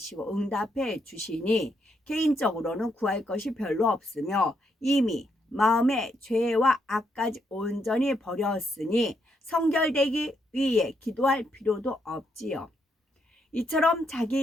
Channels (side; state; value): both; normal; correlation 0.77